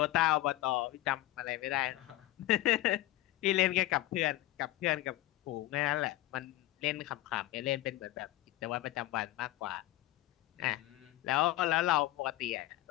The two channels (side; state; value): right; quieter; 16.3 dB